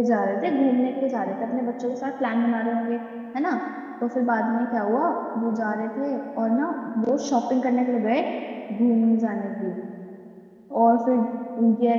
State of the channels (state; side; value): identical; both; correlation 1.00